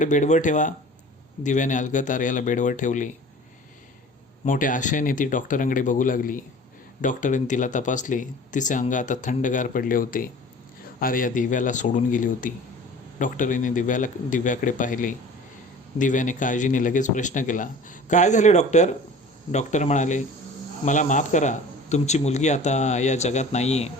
बेडवर ठेवा. दिव्याने अलगद आर्याला बेडवर ठेवले. मोठ्या आशेने ती डॉक्टरांकडे बघू लागली. डॉक्टरांनी तिला तपासले. तिचे अंग आता थंडगार पडले होते. आर्या दिव्याला सोडून गेली होती. डॉक्टरांनी दिव्याकडे पाहिले. दिव्याने काळजीने लगेच प्रश्न केला. काय झाले डॉक्टर. डॉक्टर म्हणाले, मला माफ करा, तुमची मुलगी आता या जगात नाही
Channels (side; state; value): both; normal; correlation 0.43